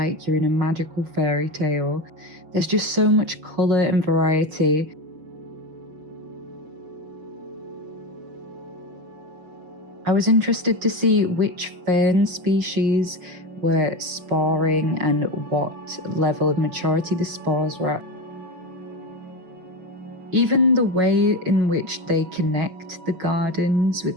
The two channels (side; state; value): left; late; 6.1 ms